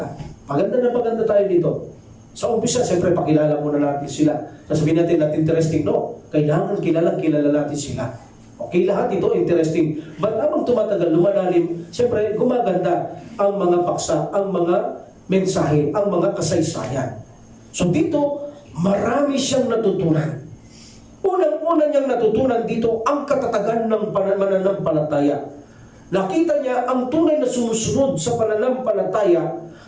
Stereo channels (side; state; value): both; identical; correlation 1.00